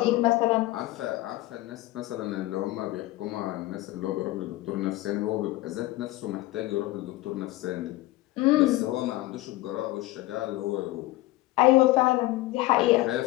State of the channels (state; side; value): quieter; right; 18.1 dB